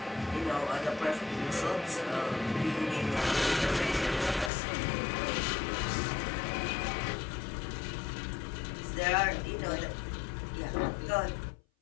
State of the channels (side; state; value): right; drops out; at 4.5 s